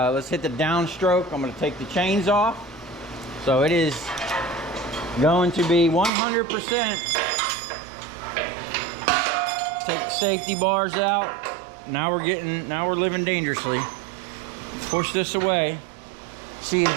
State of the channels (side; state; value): left; drops out; at 6.1 s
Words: let's hit the downstroke. I'm gonna take the chains off. So it is going to be 100%. Take the safety bars out. Now we're living dangerously. Push this away. She's